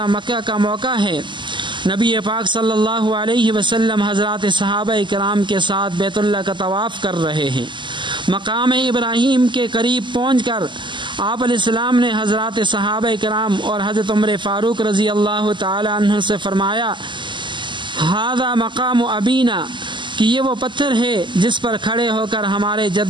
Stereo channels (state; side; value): late; left; 0.23 ms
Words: مکہ کا موقع ہے، نبی پاک صلی اللہ علیہ وسلم حضرات صحابہ کرام کے ساتھ بیت اللہ کا طواف کر رہے ہیں۔ مقام ابراہیم کے قریب پہنچ کر آپ علیہ السلام نے حضرات صحابہ کرام اور حضرت عمر فاروق رضی اللہ تعالی عنہ سے فرمایا، ھذا مقام ابینا، کہ یہ وہ پتھر ہے جس پر کھڑے ہو کر ہمارے